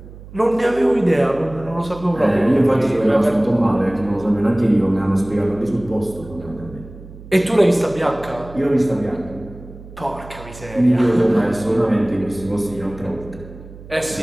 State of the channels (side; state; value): right; noise; hum, 17 dB below the sound